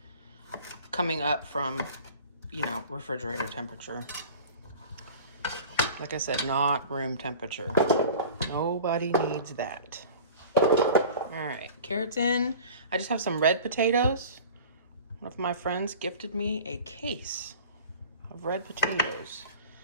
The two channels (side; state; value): both; inverted; correlation -0.40